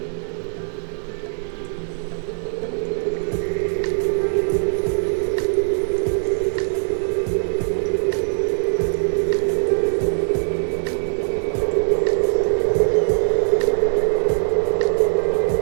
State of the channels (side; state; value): left; silent; digital silence